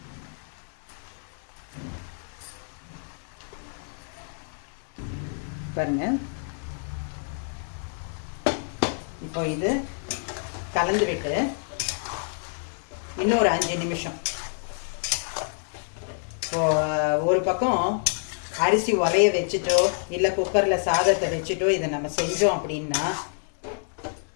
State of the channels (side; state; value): right; silent; 60 dB below the other